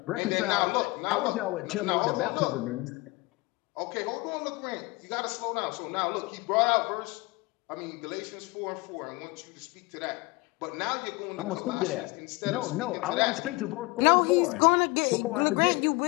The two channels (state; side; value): quieter; right; 23.9 dB